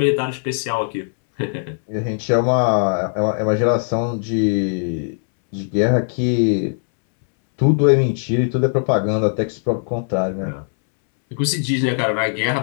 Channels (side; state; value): right; silent; 66 dB below the other